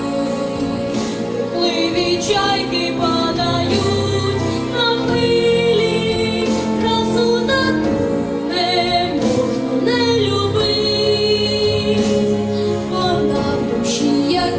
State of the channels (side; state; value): both; identical; correlation 1.00